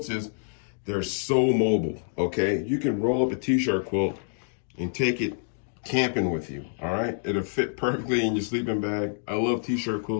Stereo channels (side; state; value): right; silent; digital silence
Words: is they're so mobile, okay? You can roll up a t-shirt quilt and take it camping with you, all right? It'll fit perfectly in your sleeping bag. I love t-shirt